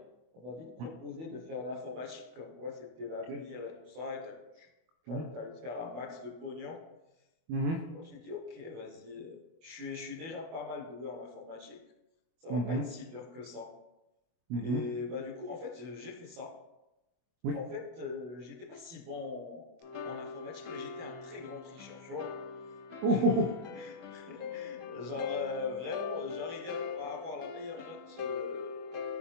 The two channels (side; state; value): left; late; 24 ms